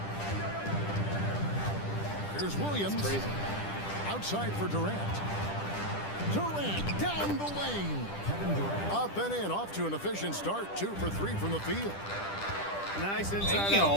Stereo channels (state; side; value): late; right; 10 ms